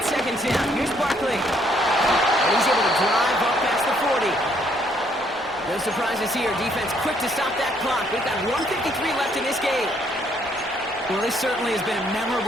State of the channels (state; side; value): normal; both; correlation 0.68